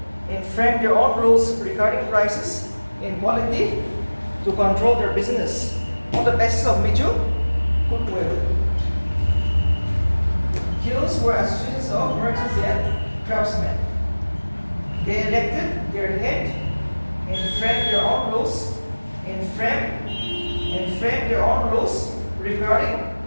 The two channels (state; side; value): inverted; both; correlation -1.00